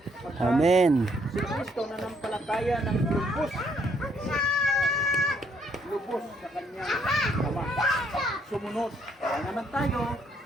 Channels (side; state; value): both; normal; correlation 0.69